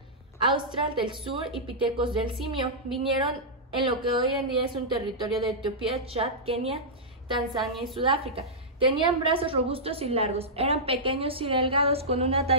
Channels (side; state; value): both; normal; correlation -0.11